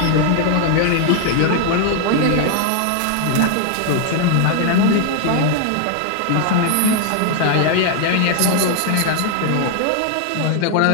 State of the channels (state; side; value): different; both; correlation 0.00